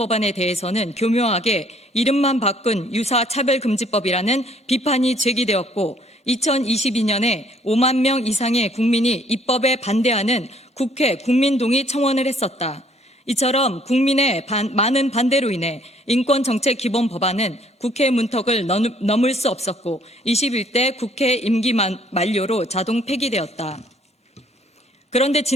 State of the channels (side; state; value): both; normal; correlation 0.61